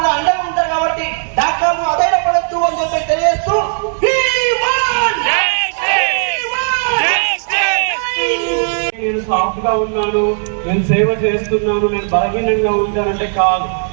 కూడా అండగా ఉంటారు. కాబట్టి డాక్టర్లు అధైర్యపడద్దు అని చెప్పి తెలియజేస్తూ నేను సాఫ్ట్ గా ఉన్నాను, నేను సేవ చేస్తున్నాను, నేను బలహీనంగా ఉంటానంటే కాదు.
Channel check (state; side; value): silent; left; 61 dB below the other